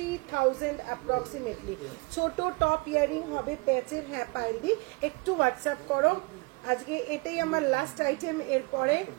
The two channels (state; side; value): quieter; left; 27.7 dB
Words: অ্যাপ্রক্সিমেটলি। ছোট টপ ইয়ারিং হবে প্যাচের। হ্যাঁ পাইলদি, একটু হোয়াটসঅ্যাপ করো। আজকে এটাই আমার লাস্ট আইটেম, এরপরে